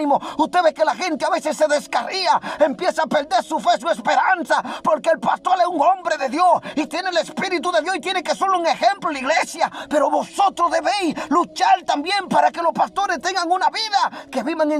Usted ve que la gente a veces se descarría, empieza a perder su fe, su esperanza, porque el pastor es un hombre de Dios y tiene el Espíritu de Dios y tiene que ser un ejemplo en la iglesia. Pero vosotros debéis luchar también para que los pastores tengan una vida, que vivan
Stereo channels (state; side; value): identical; both; correlation 1.00